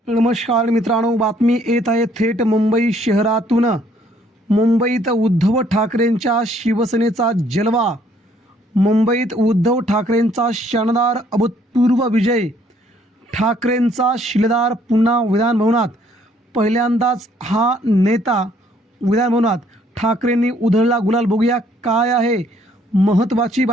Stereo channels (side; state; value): both; normal; correlation 0.64